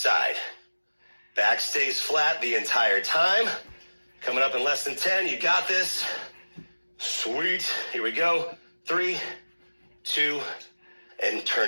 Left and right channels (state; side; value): inverted; both; correlation -1.00